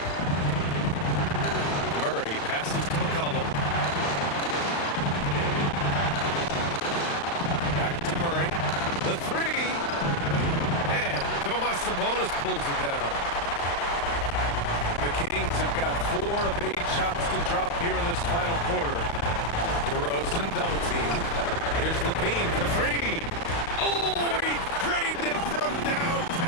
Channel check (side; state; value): right; late; 35 ms